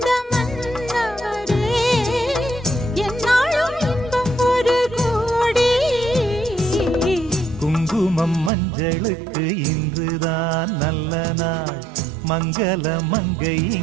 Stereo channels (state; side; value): drops out; left; at 8.5 s